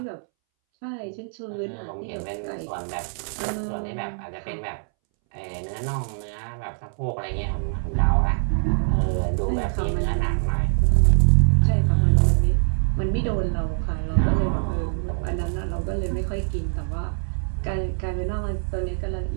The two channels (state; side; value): silent; left; 62 dB below the other